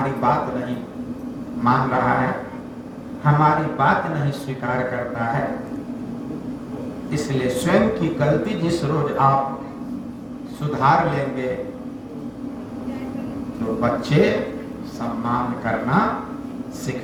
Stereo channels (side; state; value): both; identical; correlation 1.00